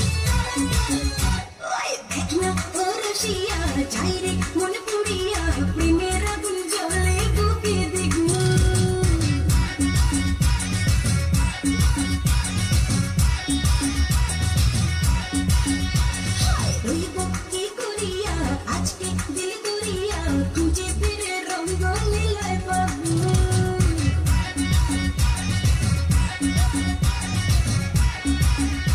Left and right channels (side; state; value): both; identical; correlation 1.00